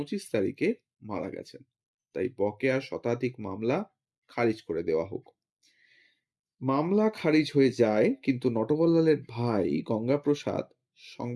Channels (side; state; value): both; identical; correlation 1.00